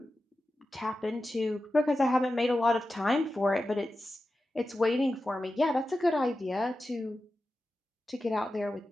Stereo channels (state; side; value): normal; both; correlation 0.92